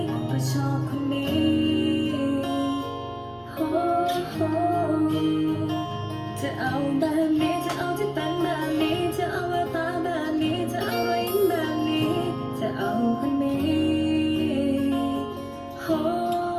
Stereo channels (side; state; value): both; identical; correlation 1.00